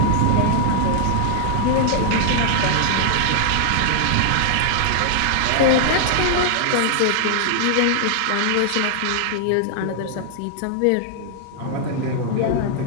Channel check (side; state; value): both; different; correlation -0.01